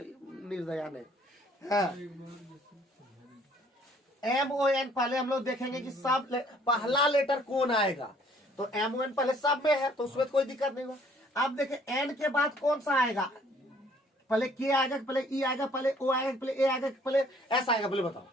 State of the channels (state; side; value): normal; both; correlation 0.60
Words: नहीं। MON पहले हम लोग देखेंगे कि सब पहला लेटर कौन आएगा, तो MON पहले सब में है तो उसमें कोई दिक्कत नहीं होगा। अब देखें N के बाद कौन सा आएगा, पहले K आएगा, पहले E आएगा, पहले O आएगा, पहले A आएगा, पहले S आएगा, पहले बताओ।